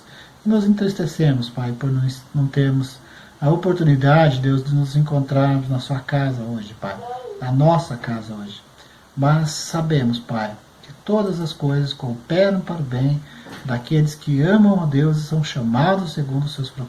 E nos entristecemos, Pai, por não termos a oportunidade, Deus, de nos encontrarmos na sua casa hoje, Pai, na nossa casa hoje. mas sabemos, Pai, que todas as coisas cooperam para o bem daqueles que amam a Deus e são chamados segundo os seus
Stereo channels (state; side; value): identical; both; correlation 1.00